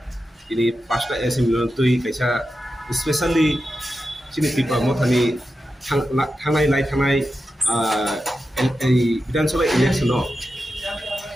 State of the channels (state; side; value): normal; both; correlation 0.90